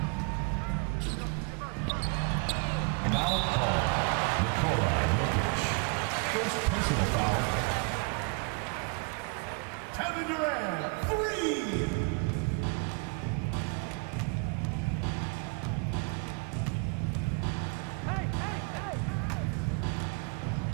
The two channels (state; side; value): quieter; left; 31.9 dB